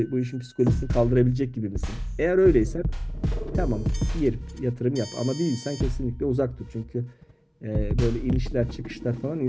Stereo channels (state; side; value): identical; both; correlation 1.00